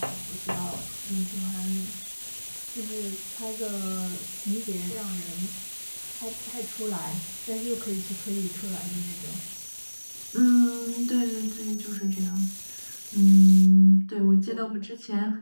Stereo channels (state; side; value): inverted; both; correlation -1.00